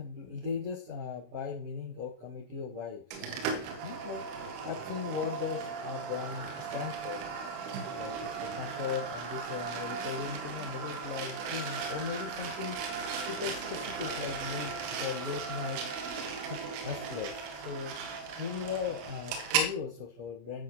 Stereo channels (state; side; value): late; left; 26 ms